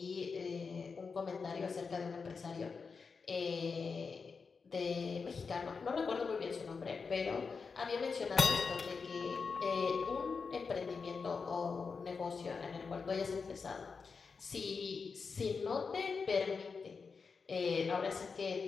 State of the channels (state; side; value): quieter; right; 5.1 dB